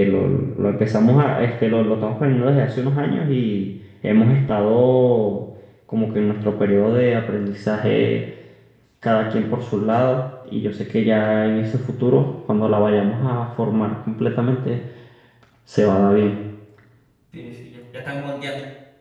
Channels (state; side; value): identical; both; correlation 1.00